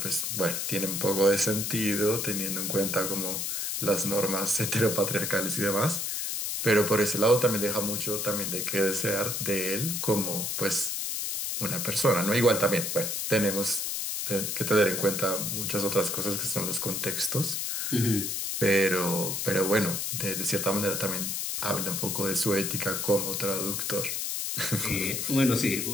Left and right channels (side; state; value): left; noise; hiss, 2 dB below the sound